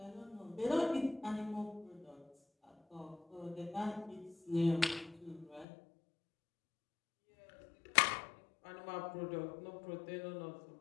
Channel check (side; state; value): right; drops out; at 5.7 s